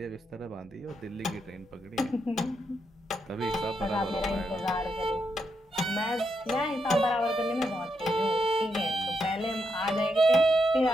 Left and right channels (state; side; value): normal; both; correlation 0.81